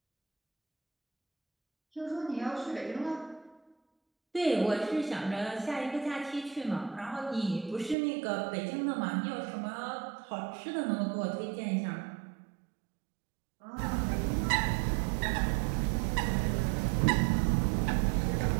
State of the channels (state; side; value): drops out; left; at 8.0 s